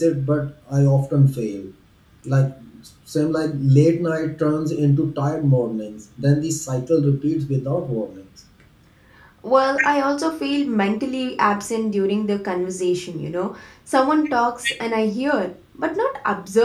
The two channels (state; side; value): identical; both; correlation 1.00